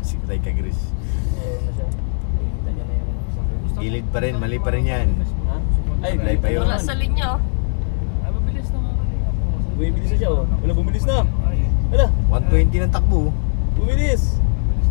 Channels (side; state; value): right; silent; 62 dB below the other